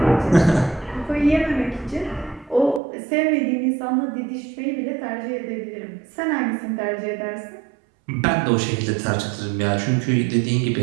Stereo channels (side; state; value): left; drops out; at 2.8 s